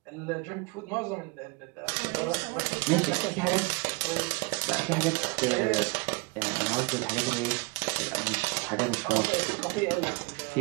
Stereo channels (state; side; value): quieter; left; 29.4 dB